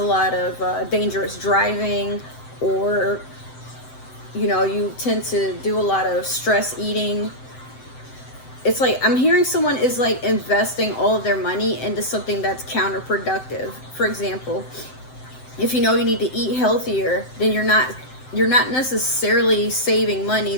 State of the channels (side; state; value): right; late; 7.8 ms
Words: lot of dangerous driving, or, you know, you tend to do a lot of stress eating. It's like, I'm hearing someone is like investing all of their money into something that's counterproductive. For example, if you know you need to eat healthier, then you're not necessarily saving money